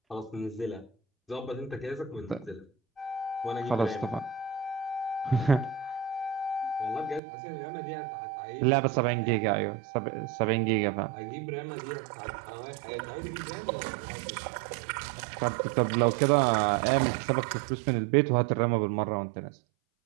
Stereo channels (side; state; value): left; drops out; at 7.2 s